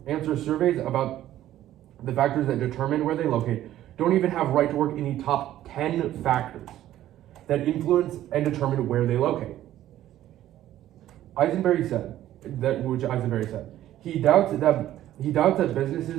answer surveys about the factors that determine where they locate don't even have right to work in the top 10 factors that influence and determine where they locate. Eisenberry said, he doubts that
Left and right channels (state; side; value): quieter; left; 13.1 dB